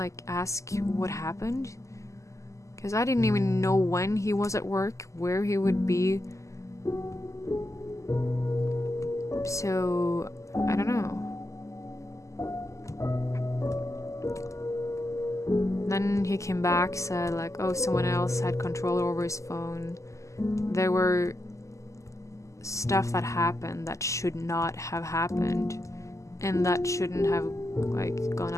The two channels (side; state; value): right; late; 0.15 ms